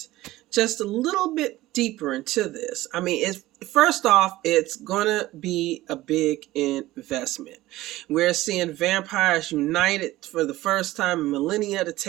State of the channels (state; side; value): quieter; left; 17.0 dB